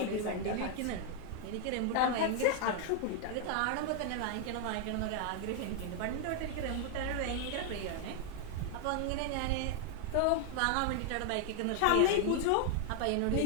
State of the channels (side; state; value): both; different; correlation 0.00